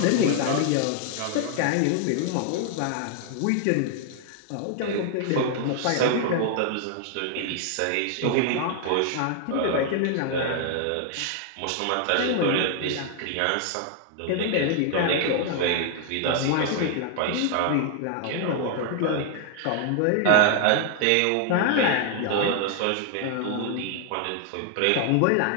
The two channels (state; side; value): different; both; correlation 0.00